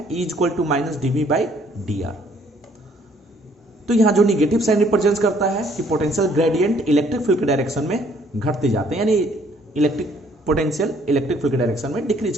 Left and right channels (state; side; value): normal; both; correlation 0.63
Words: E equal to minus dV/dr। तो यहां जो निगेटिव साइन रिप्रेजेंट करता है कि पोटेंशियल ग्रेडियंट इलेक्ट्रिक फील्ड के डायरेक्शन में घटते जाते हैं, यानी इलेक्ट्रिक पोटेंशियल इलेक्ट्रिक फील्ड के डायरेक्शन में डिक्रीज